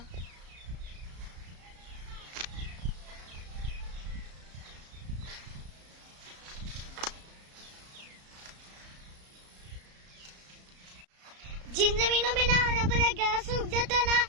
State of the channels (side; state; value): left; late; 34 ms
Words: जिन जमीनों में ना हरा भरा घास उग जाता है ना,